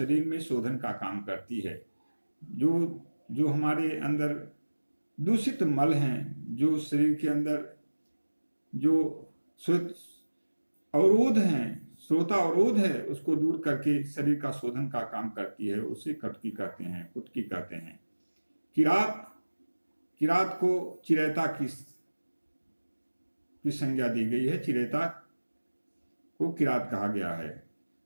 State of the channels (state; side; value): inverted; both; correlation -1.00